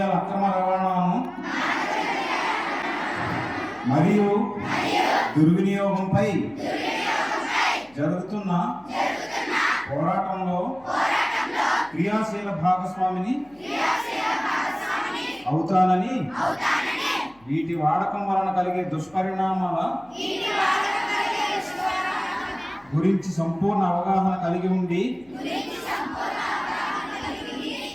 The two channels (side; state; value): left; noise; hum, 30 dB below the sound